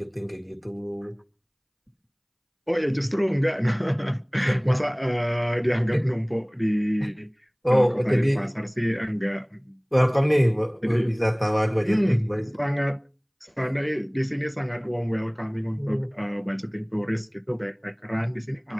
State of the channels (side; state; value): both; identical; correlation 1.00